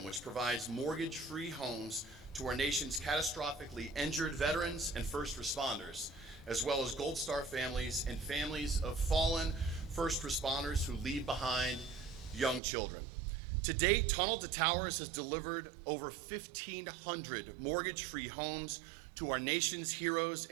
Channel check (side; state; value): left; drops out; at 12.6 s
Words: which provides mortgage-free homes to our nation's catastrophically injured veterans and first responders, as well as Gold Star families and families of fallen first responders who leave behind young children. To date, Tunnel to Towers has delivered over 1,500 mortgage-free homes to our nation's heroes